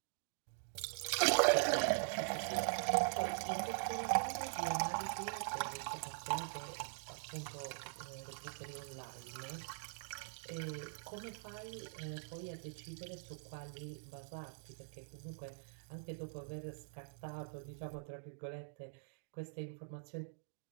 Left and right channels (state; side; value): silent; left; digital silence